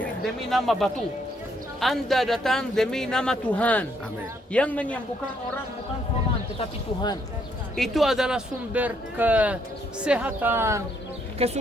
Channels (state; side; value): normal; both; correlation 0.71